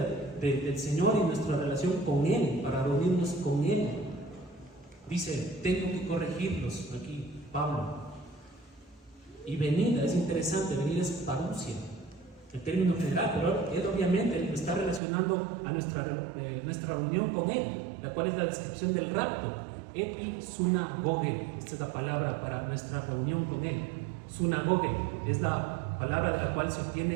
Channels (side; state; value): left; drops out; at 15.0 s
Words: del Señor y nuestra relación con Él, para reunirnos con Él. Dice, tengo que corregirlos, aquí Pablo. Y venida, es interesante, venida es parousia, el término general, pero él obviamente está relacionando a nuestra reunión con él, la cual es la descripción del rapto. Episunagoge, esta es la palabra para nuestra reunión con él. Sunagoge es la palabra de la cual se